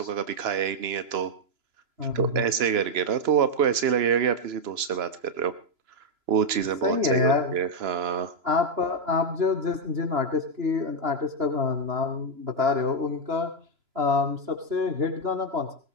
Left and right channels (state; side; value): late; left; 3.0 ms